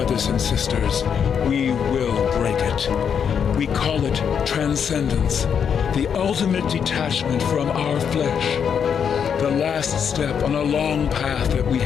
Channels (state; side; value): quieter; right; 7.5 dB